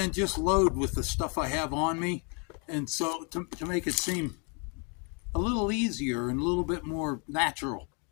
just load with the stuff I have on me. And so to make it seem a little easier and a little bit more natural.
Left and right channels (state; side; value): quieter; right; 35.3 dB